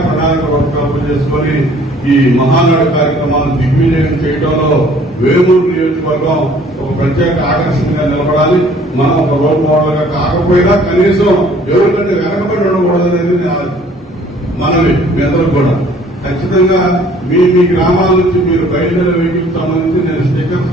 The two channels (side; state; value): both; normal; correlation 0.56